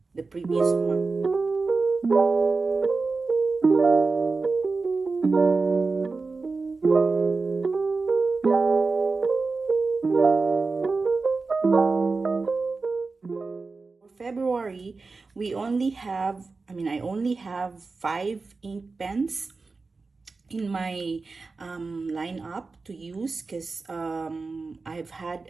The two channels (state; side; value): quieter; left; 4.0 dB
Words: the previous month. February, I only have 5 ink pens in my lineup to use, because I've had